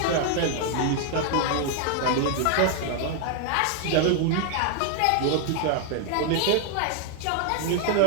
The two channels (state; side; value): different; both; correlation 0.00